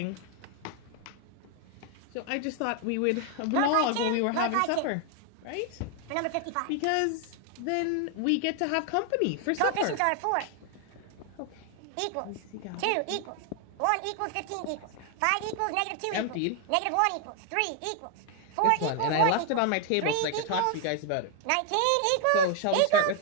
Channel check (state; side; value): different; both; correlation 0.00